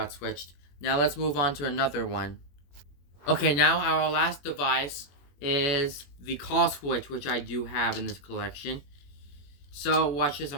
switched. Now let's move on to another one. Okay, now our last device is the call switch, which I do have in this collection. So watch this,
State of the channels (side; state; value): right; late; 21 ms